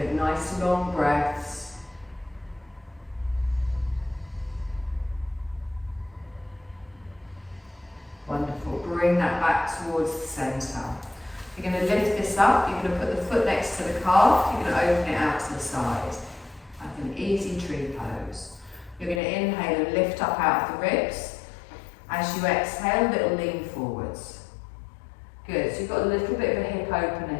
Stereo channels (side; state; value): right; drops out; at 19.2 s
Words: nice long breaths. Wonderful, bring that back towards the centre. You're going to lift this up, you're going to put the foot next to the calf, you're going to open it out to the side, like an easy tree pose. You're going to inhale and lift up out of the ribs. As you exhale, little lean forwards. Good, so you've got a little bit of a hip opener